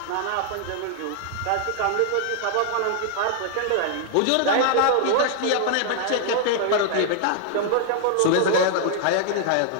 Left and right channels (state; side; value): different; both; correlation 0.00